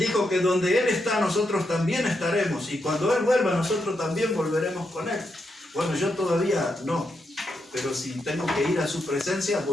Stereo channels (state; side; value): normal; both; correlation 0.83